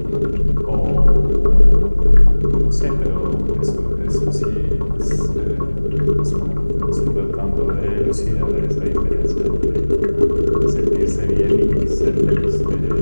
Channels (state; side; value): inverted; both; correlation -1.00